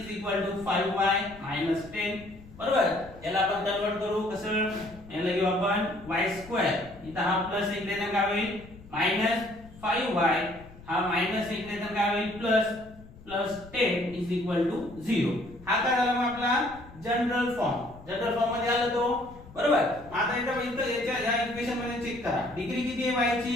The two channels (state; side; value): noise; left; rumble, 20 dB below the sound